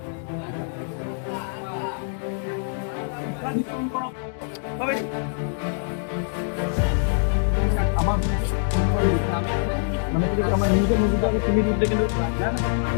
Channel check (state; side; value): silent; right; digital silence